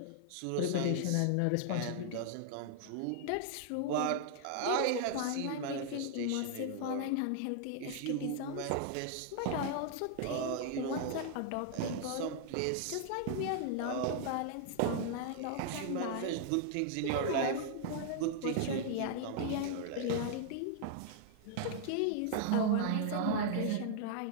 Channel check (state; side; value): different; both; correlation 0.00